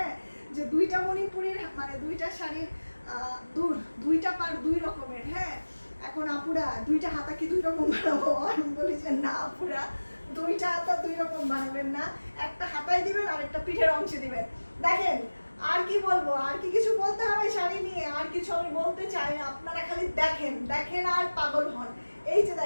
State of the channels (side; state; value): both; inverted; correlation -1.00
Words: যে 2টা মণিপুরের মানে 2টা শাড়ির দুইটা পার 2 রকমের। হ্যাঁ, এখন আপুরা 2টা হাতা কি 2 রকম বানাবো? আমি বলি যে না আপুরা, 2টা হাতা 2 রকম বানাবেন না, একটা হাতায় দিবেন আর একটা পিঠের অংশে দিবেন। দেখেন আর কি বলবো, আর কি কিছু বলতে হবে শাড়ি নিয়ে? আর কিছু আমি বলতে চাই না, আপনারা খালি দেখেন আর পাগল হন। এই যে